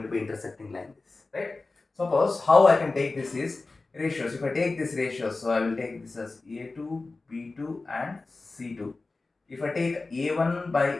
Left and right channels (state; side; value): quieter; right; 3.5 dB